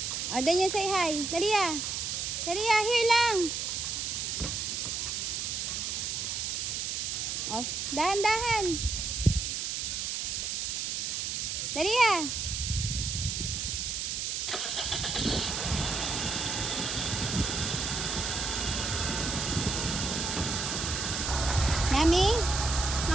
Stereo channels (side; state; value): right; noise; hiss, 2 dB below the sound